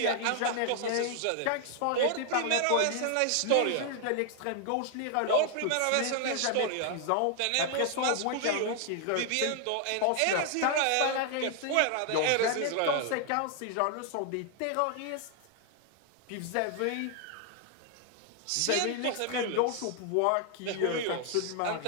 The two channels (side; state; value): both; different; correlation 0.00